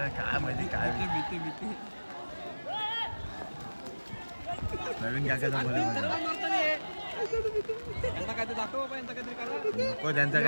काय माहिती काय भीती. प्रवीण काकाचा पोरे नको त्यांचा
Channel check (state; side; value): inverted; both; correlation -1.00